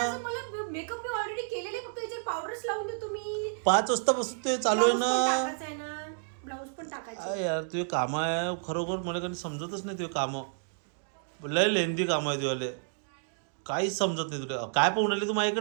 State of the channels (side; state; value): left; silent; digital silence